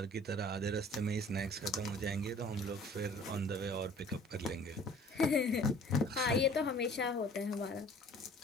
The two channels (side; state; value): both; normal; correlation 0.50